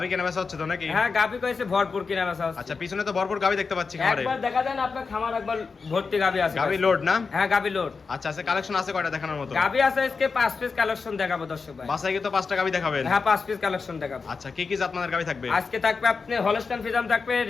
কেনা বেচা হচ্ছে তো নাকি? হ্যাঁ, গাবি কইছে ভরপুর কিনা বেচা হচ্ছে। আচ্ছা, পিছনে তো ভরপুর গাবি দেখতে পাচ্ছি খামারে। একবার দেখা দেন আপনার খামার একবার ভর্তি গাবি আছে। গাবি লোড না? হ্যাঁ, গাবি লোড। আচ্ছা, আছে কালেকশন আছে কয়টা দেখানোর মতো? গাবি আছে আজকে 5 পিস কালেকশন দেখাবো দর্শক ভাই। বাসায় কি তো 5টা গাবি দেখাবেন? হ্যাঁ, 5 পিস কালেকশন দেখাবো। আচ্ছা, কি কি জাত মানের গাবি থাকবে? আজকে থাকবে আপনি হলস্টাইন ফ্রিজাম থাকবে,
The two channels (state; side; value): quieter; right; 4.8 dB